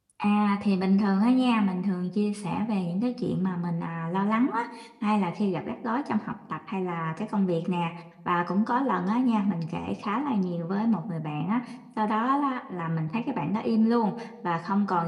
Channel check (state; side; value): identical; both; correlation 1.00